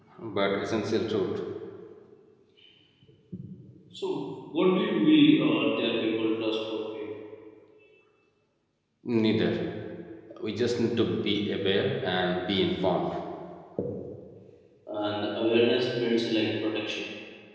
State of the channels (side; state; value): both; identical; correlation 1.00